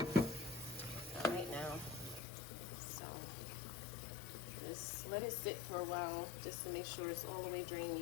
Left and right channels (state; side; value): drops out; right; at 2.2 s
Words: Just let it sit for a while just to make sure it's all the way drained.